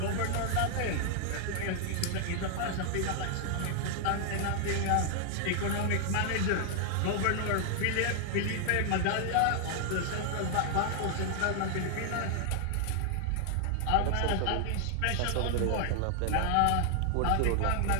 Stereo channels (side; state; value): both; different; correlation 0.00